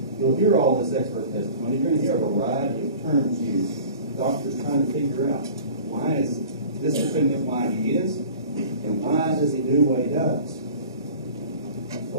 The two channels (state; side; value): inverted; both; correlation -0.42